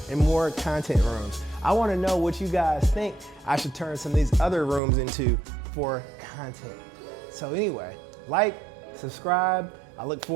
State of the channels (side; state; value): left; drops out; at 4.8 s